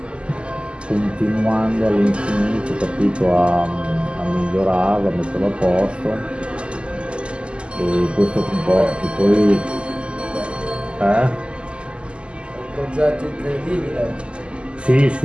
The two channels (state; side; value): late; left; 0.052 ms